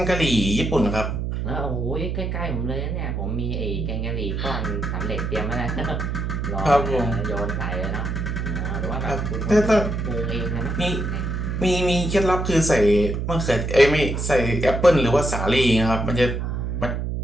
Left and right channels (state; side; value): noise; right; hum, 2 dB below the sound